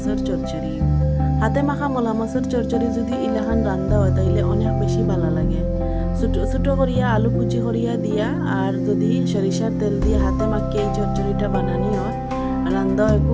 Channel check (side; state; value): both; identical; correlation 1.00